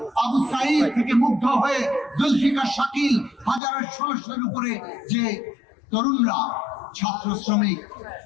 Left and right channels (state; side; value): drops out; right; at 3.6 s